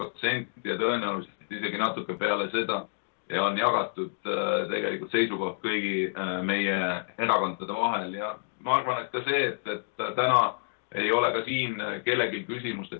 ja tõenäoliselt isegi natuke peale seda ja on jagatud tegelikult seisukoht kõigi meie erakondade vahel. Ja ma arvan, et ka see, et täna ei ole ka siin kellelgi küsimust, et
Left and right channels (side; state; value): right; silent; 59 dB below the other